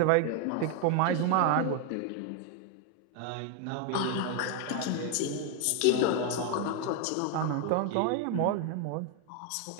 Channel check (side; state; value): both; different; correlation 0.01